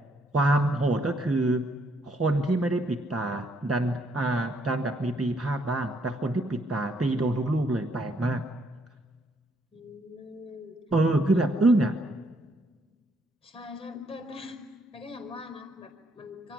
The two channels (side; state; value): both; normal; correlation 0.71